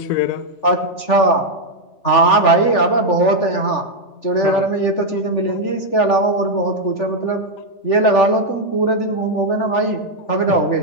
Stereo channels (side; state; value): right; late; 3.4 ms